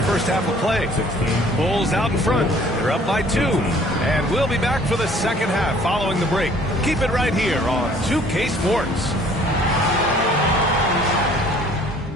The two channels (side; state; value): both; normal; correlation 0.56